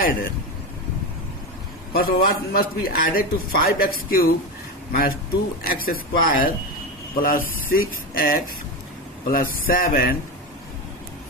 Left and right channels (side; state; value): both; normal; correlation 0.18